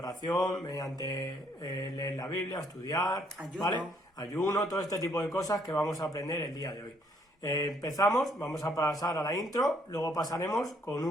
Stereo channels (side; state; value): both; normal; correlation 0.68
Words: mediante leer la Biblia, estudiar, ayuno. ¿vale? Ayuno, todo este tipo de cosas que vamos a aprender el día de hoy. Empezamos, vamos a pasar a la intro, luego pasaremos con